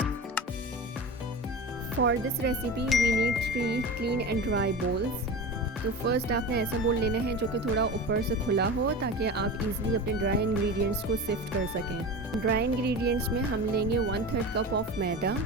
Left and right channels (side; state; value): both; normal; correlation 0.29